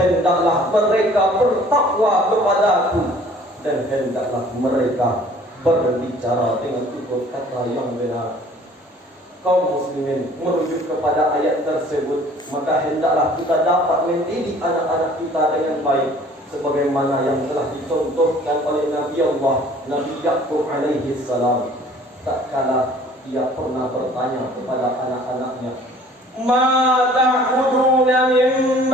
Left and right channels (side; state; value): both; normal; correlation 0.53